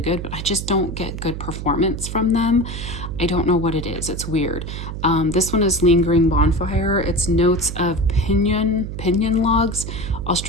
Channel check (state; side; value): noise; right; hum, 7 dB below the sound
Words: good, but I just don't get good performance from them. I don't know what it is. It's weird. This one is Lingering Bonfire. It's notes of pinyon logs,